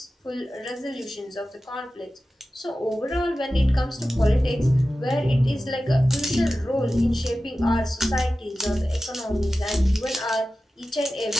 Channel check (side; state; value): both; normal; correlation 0.94